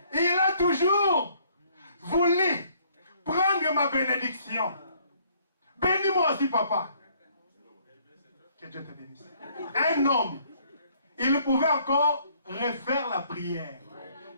Il a toujours voulu prendre ma bénédiction. Bénis-moi aussi, papa. Que Dieu te bénisse. Un homme, il pouvait encore refaire la prière.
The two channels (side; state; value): both; inverted; correlation -0.63